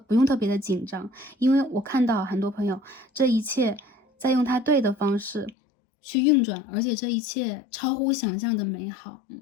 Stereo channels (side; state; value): right; drops out; at 5.6 s